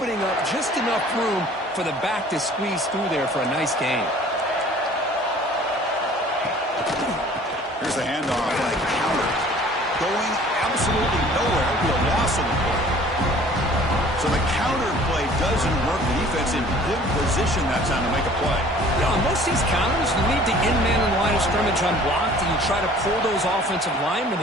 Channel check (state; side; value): normal; both; correlation 0.51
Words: up just enough room for the back to squeeze through there for a nice gain. Here's the handoff and a counter. Going absolutely nowhere to a loss on the play. So the counter play doesn't work. The defense in good position that time to make a play. Yeah, on most of these counters, you leave the in-man in the line of scrimmage unblocked, and you try to pull those offensive